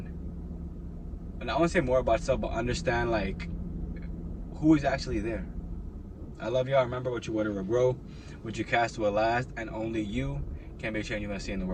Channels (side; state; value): both; identical; correlation 1.00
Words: and I want to say more about yourself, but understand like who is actually there. I love y'all. Remember, what you water will grow, what you cast will last, and only you can make change you want to see in the